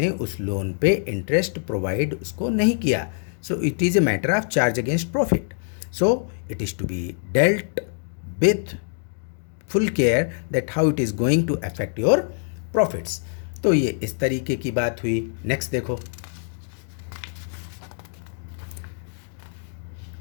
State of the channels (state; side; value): silent; right; digital silence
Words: उस लोन पे इंटरेस्ट प्रोवाइड उसको नहीं किया, so it is a matter of charge against profit. So it is to be dealt with full care that how it is going to affect your profits. तो ये इस तरीके की बात हुई। नेक्स्ट देखो,